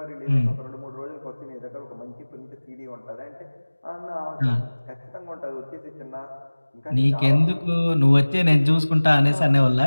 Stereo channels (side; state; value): both; inverted; correlation -1.00